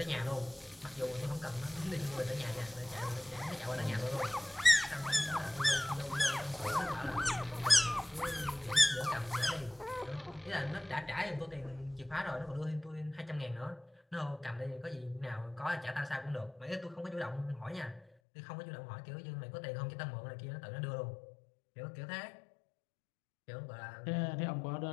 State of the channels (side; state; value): right; drops out; at 18.1 s